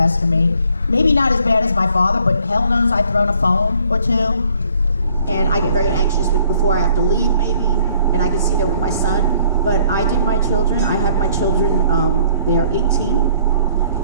of me. Maybe not as bad as my father, but hell knows I've thrown a phone or 2. And I get very anxious before I have to leave, maybe. And I can see that with my son. But I did my children. I have my children, they are 18.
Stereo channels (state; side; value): inverted; both; correlation -0.61